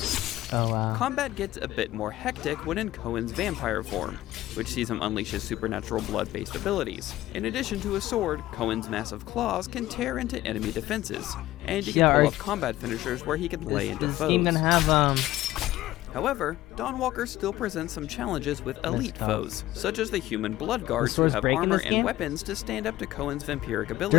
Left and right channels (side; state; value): right; quieter; 15.6 dB